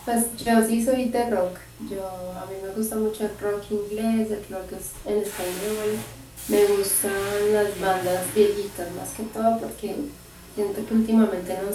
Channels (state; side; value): identical; both; correlation 1.00